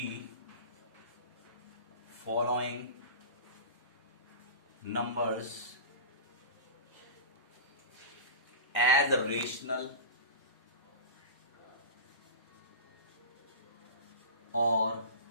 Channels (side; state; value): both; inverted; correlation -0.30